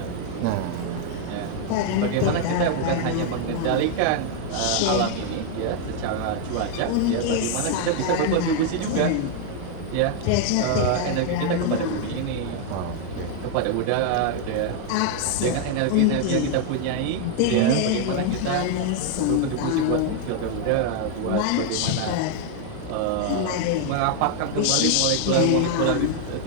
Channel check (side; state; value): both; different; correlation 0.00